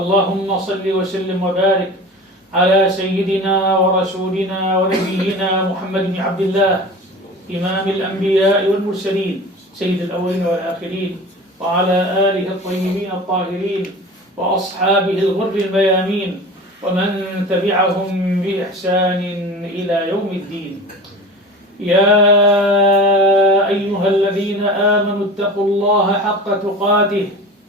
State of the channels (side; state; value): both; normal; correlation 0.36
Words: صل وسلم وبارك على سيدنا ورسولنا ونبينا محمد بن عبد الله إمام الأنبياء والمرسلين سيد الأولين والآخرين، وعلى آله الطيبين الطاهرين وأصحابه الغر الميامين ومن تبعهم بإحسان إلى يوم الدين. يا أيها الذين آمنوا اتقوا الله حق تقاته